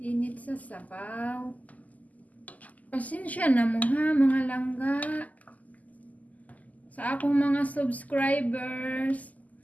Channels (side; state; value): right; late; 0.077 ms